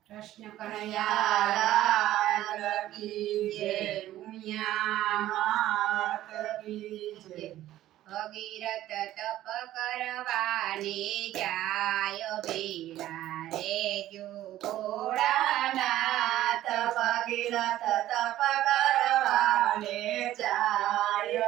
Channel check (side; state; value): left; quieter; 13.9 dB